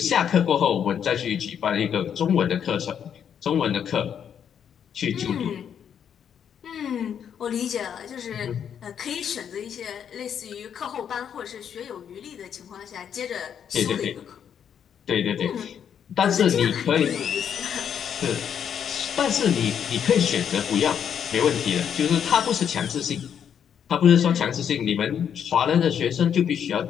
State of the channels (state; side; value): quieter; right; 8.4 dB